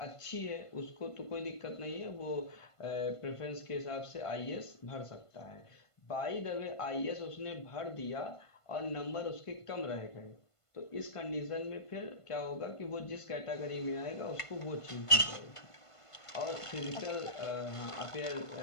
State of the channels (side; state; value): right; late; 1.5 ms